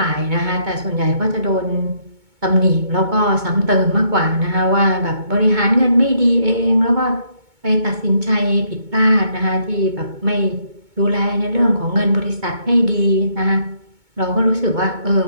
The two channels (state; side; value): late; left; 2.2 ms